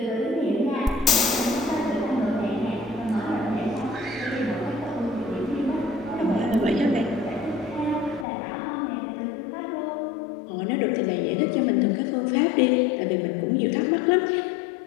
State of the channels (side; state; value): right; drops out; at 8.2 s